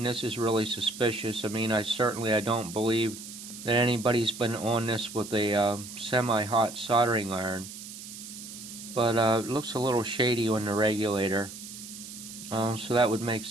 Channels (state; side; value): noise; right; hiss, 12 dB below the sound